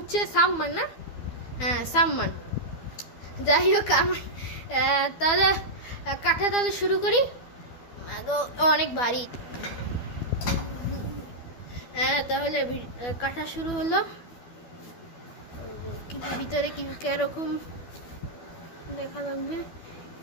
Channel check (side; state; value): right; late; 12 ms